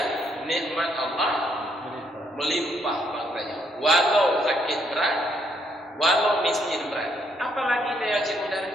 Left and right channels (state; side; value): normal; both; correlation 0.72